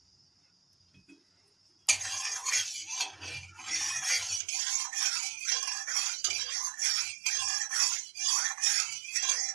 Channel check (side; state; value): left; drops out; at 4.4 s